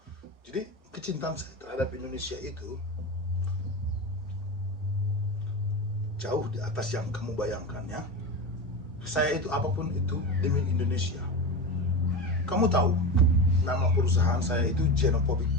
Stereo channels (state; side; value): normal; both; correlation 0.23